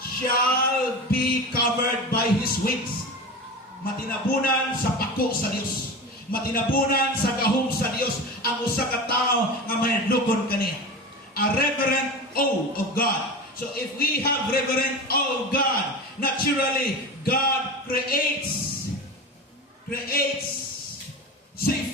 shall be covered by His wings. Matinabunan sa pako sa Dios. Matinabunan sa gahom sa Dios ang usa ka tawo nga madlukon kaniya. A reverent awe of God. So if we have reverent awe of God, naturally God creates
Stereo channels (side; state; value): both; normal; correlation 0.28